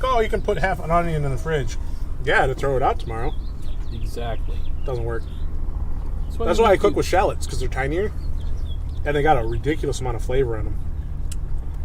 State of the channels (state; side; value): identical; both; correlation 1.00